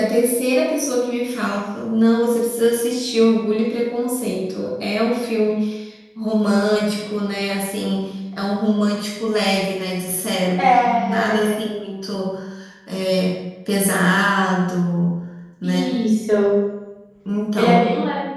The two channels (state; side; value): identical; both; correlation 1.00